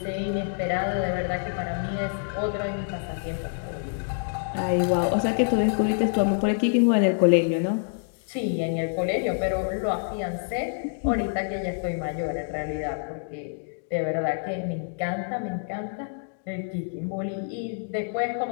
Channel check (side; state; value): right; silent; digital silence